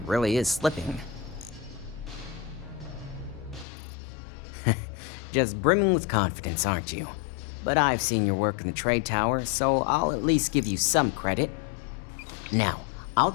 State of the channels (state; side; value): drops out; right; at 3.7 s